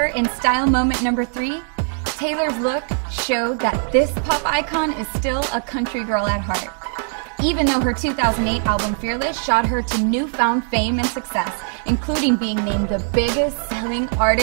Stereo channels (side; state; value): left; silent; 65 dB below the other